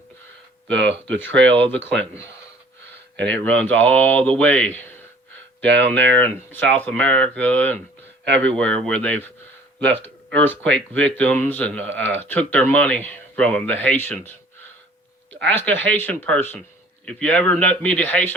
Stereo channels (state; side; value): normal; both; correlation 0.52